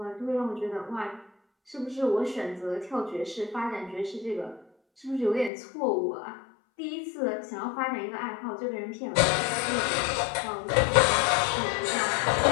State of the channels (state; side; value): drops out; right; at 5.5 s